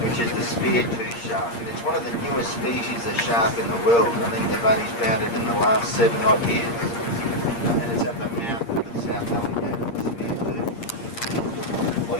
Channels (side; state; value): right; late; 8.6 ms